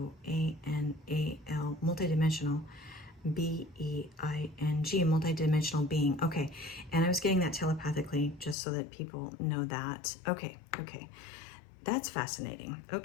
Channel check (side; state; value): right; drops out; at 8.6 s